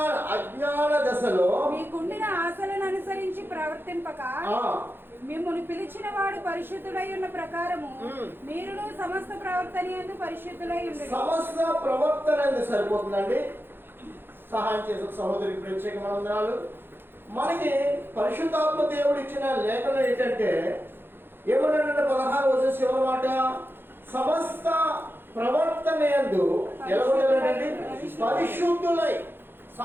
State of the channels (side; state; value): left; late; 0.10 ms